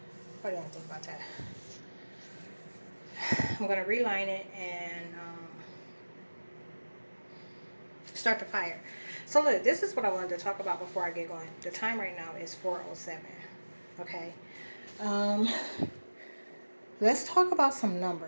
what do you think about that? I'm going to reline it and start the fire. So look, this is what I wanted to talk about before I get going. The time right now is 4:07. Okay. Let's talk about some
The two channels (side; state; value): both; inverted; correlation -1.00